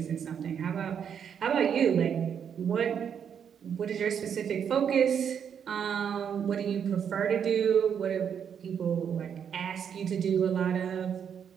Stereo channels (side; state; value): left; quieter; 7.9 dB